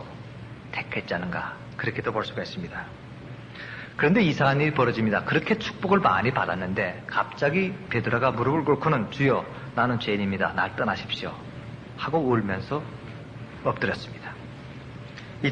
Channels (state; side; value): identical; both; correlation 1.00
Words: 택했지 않은가 그렇게도 볼 수가 있습니다. 그런데 이상한 일이 벌어집니다. 그렇게 축복을 많이 받았는데 갑자기 베드로가 무릎을 꿇고는 주여 나는 죄인입니다. 날 떠나십시오 하고 울면서 엎드렸습니다.